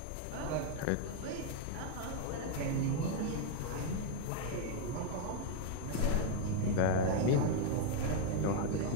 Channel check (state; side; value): different; both; correlation 0.00